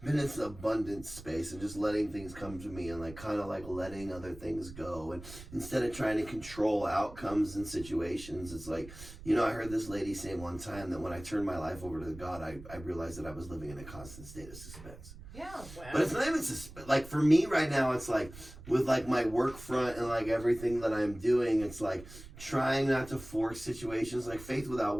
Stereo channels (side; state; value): right; noise; rumble, 15 dB below the sound